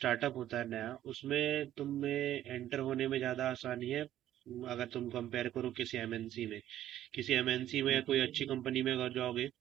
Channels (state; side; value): quieter; left; 12.3 dB